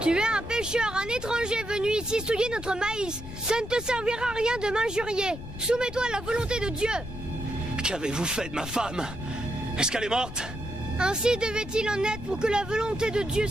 es un pêcheur, un étranger venu ici souiller notre maïs. Ça ne te servira à rien de m'injurier. Soumets-toi à la volonté de Dieu. Qu'avez-vous fait de ma femme? Est-ce qu'elle est morte? Ainsi devait-il en être pour que la volonté de Dieu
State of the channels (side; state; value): left; noise; rumble, 11 dB below the sound